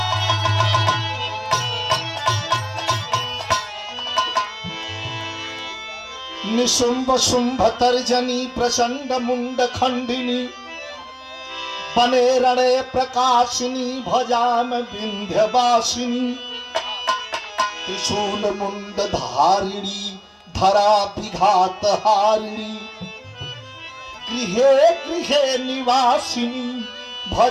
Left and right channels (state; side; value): identical; both; correlation 1.00